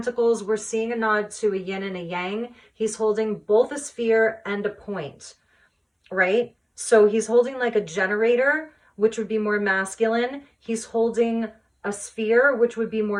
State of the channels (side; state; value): both; identical; correlation 1.00